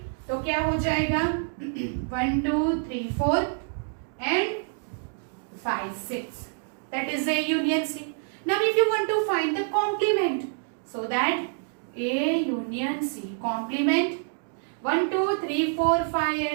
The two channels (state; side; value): silent; left; digital silence